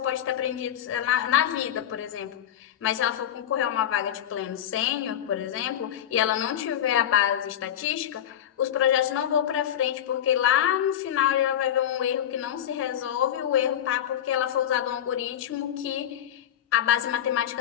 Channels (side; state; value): right; quieter; 10.5 dB